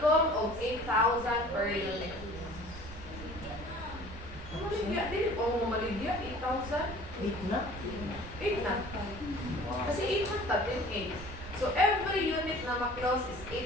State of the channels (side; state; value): right; noise; rumble, 12 dB below the sound